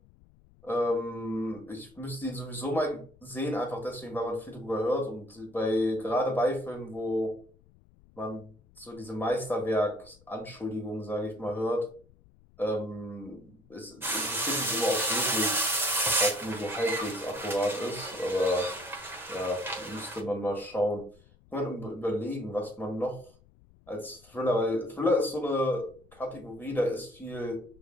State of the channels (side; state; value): left; noise; rumble, 27 dB below the sound